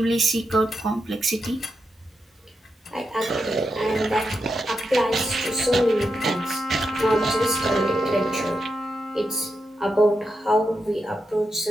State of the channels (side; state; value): both; normal; correlation 0.86